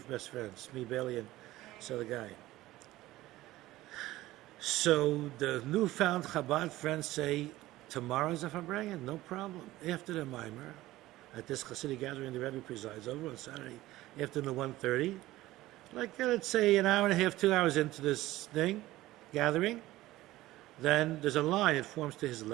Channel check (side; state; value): left; quieter; 16.7 dB